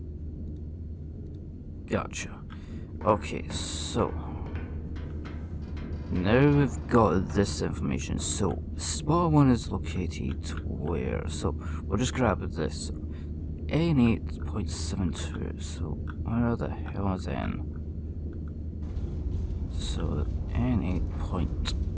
Gotcha. Okay, so now we've got this information. So spot 1 is located where? So we'll just grab this. N8.72. So where the hell is N? So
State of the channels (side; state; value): both; identical; correlation 1.00